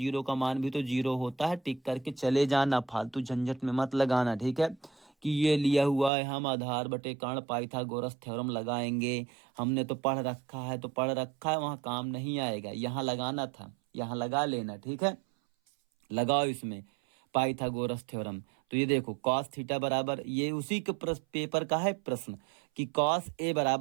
का मान भी तो 0 होता है। टिक करके चले जाना, फालतू झंझट में मत लगाना, ठीक है। कि ये लिया हुआ है, हम आधार बटे कर्ण पाइथागोरस थ्योरम लगाएंगे, हमने तो पढ़ रखा है, तो पढ़ रखा है, वहां काम नहीं आएगा, यहाँ लगाना था, यहाँ लगा लेना, ठीक है। लगाओ इसमें पाइथागोरस थ्योरम। तो ये देखो, कॉस थीटा बराबर, ये उसी के पेपर का है प्रश्न कि कॉस ए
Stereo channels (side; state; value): left; drops out; at 6.1 s